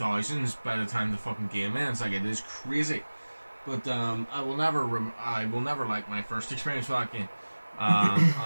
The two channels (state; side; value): inverted; both; correlation -1.00